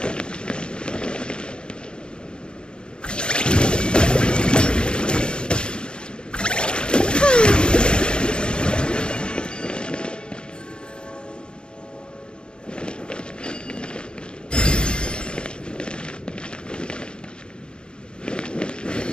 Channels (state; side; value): late; right; 0.051 ms